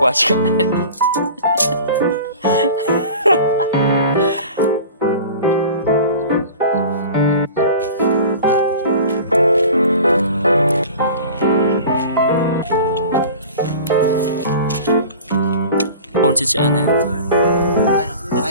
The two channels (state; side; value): inverted; both; correlation -0.39